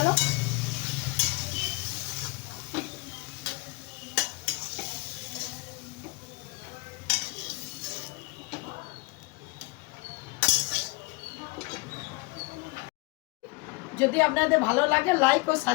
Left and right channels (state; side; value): quieter; right; 26.4 dB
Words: যদি আপনাদের ভালো লাগে লাইক ও